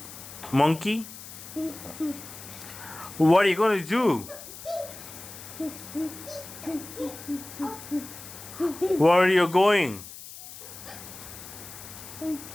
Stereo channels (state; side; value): noise; left; hiss, 14 dB below the sound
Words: monkey? What are you going to do? Where are you going?